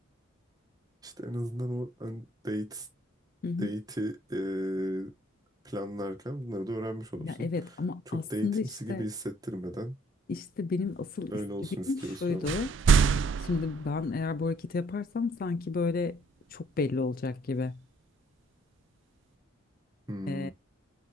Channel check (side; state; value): both; normal; correlation 0.64